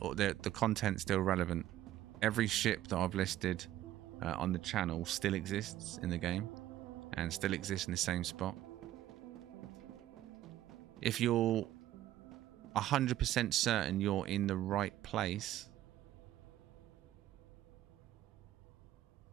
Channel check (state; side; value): quieter; left; 13.6 dB